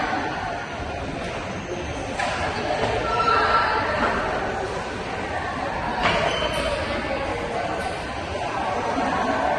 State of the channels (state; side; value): identical; both; correlation 1.00